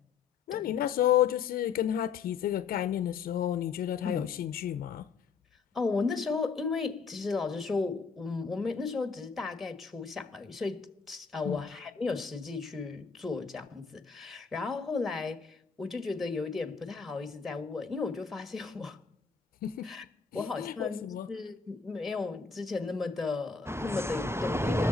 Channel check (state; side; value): quieter; right; 5.5 dB